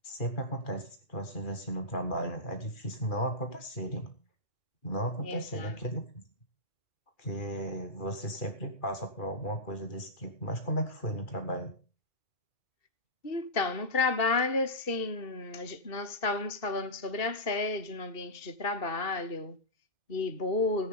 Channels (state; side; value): late; right; 2.7 ms